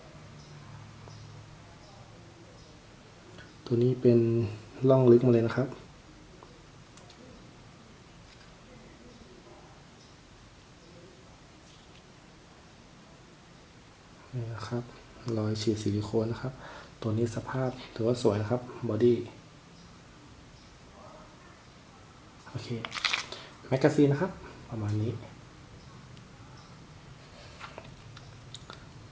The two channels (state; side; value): identical; both; correlation 1.00